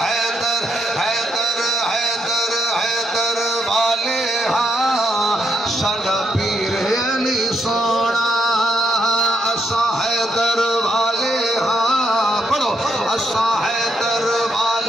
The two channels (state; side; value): normal; both; correlation 0.78